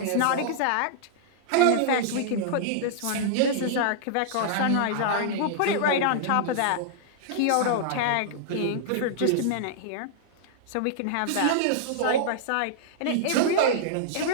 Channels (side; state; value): both; different; correlation -0.01